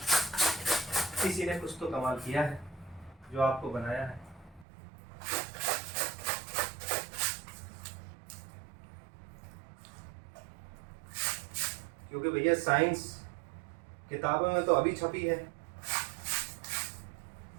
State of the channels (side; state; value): left; drops out; at 4.7 s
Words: किसी ने कुछ तो कमाल किया है जो आपको बनाया है। क्योंकि भैया साइंस किताबों में तो अभी छपी है,